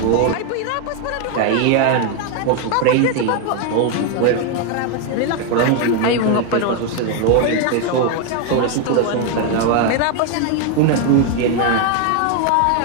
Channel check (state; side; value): different; both; correlation 0.01